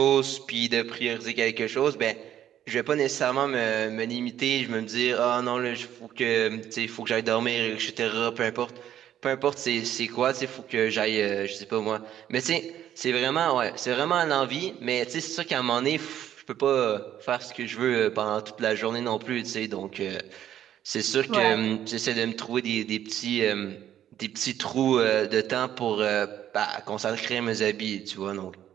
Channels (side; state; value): left; quieter; 11.0 dB